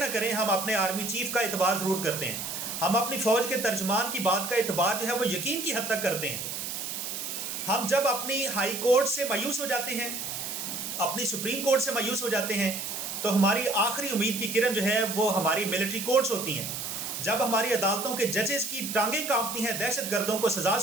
کریں، ہم اپنے آرمی چیف کا اعتبار ضرور کرتے ہیں. ہم اپنی فوج کے ترجمان کی بات کا اعتبار جو ہے وہ یقین کی حد تک کرتے ہیں. ہم جب اپنی ہائی کورٹ سے مایوس ہو جاتے ہیں، اپنی سپریم کورٹ سے مایوس ہو جاتے ہیں، تو ہماری آخری امید کی کرن جو ہے وہ ہماری ملٹری کورٹس ہوتی ہیں. جب ہماری عدالتوں کے ججز کی ٹانگیں کانپتی ہیں دہشت گردوں کو سزا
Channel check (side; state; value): right; noise; hiss, 5 dB below the sound